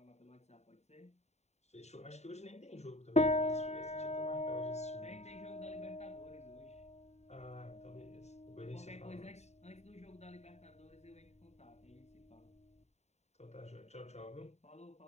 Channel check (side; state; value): right; late; 0.32 ms